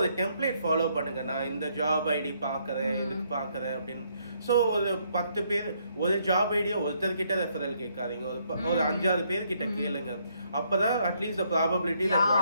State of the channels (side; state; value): both; inverted; correlation -0.71